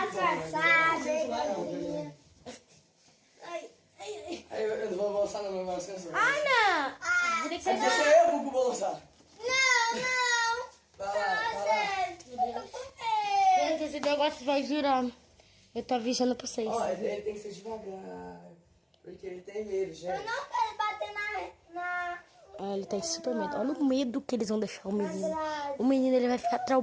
disfarçado. Aí eu não vou balançar não, meu balançar. Ah, não. Tem que ser Deixa eu, Gugu, balançar. Não. Vai lá. Eu tô com medo. Gente, esse negócio vai girando. Eu tô avisando pra vocês. Ó, ele tem que ser devagar. Porque ele tem medo, Eu gente. não quero bater na Ele tem super medo. Olha o medo que eles vão deixar o menino. grade. O menino, ele vai ficar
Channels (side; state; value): both; identical; correlation 1.00